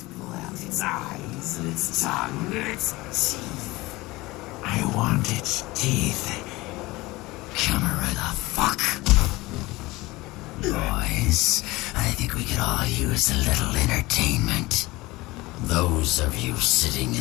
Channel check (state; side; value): quieter; right; 20.8 dB